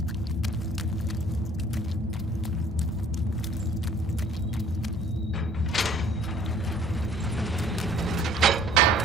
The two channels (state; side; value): normal; both; correlation 0.54